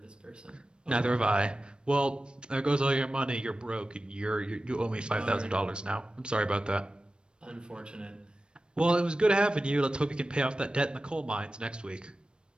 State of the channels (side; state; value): left; late; 0.054 ms